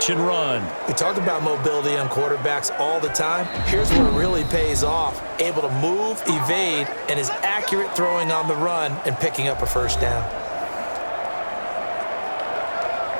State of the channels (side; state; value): both; inverted; correlation -1.00